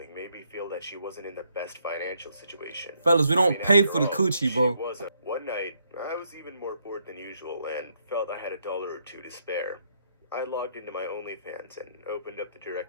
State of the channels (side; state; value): both; inverted; correlation -0.73